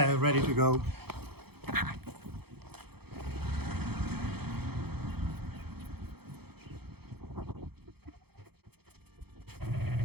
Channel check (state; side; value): late; left; 0.96 ms